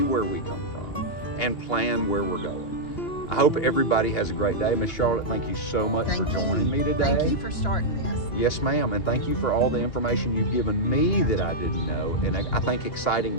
where we come from and plan where we're going. I hope everybody has a great day. Miss Charlotte, thank you so much for joining me today. Thank you for starting this. Yes, ma'am, and thank you for all the information you've given me that I didn't know, and I think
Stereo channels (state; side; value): late; right; 2.9 ms